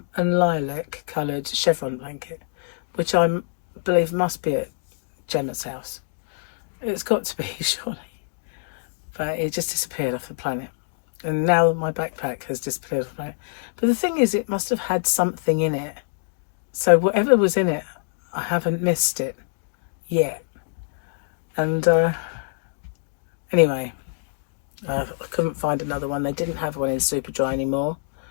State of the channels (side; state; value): right; silent; digital silence